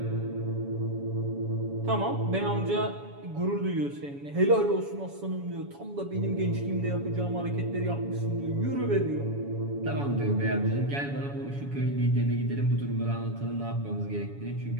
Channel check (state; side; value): late; left; 7.1 ms